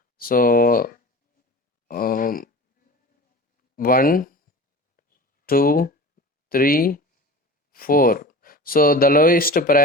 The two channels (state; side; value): normal; both; correlation 0.35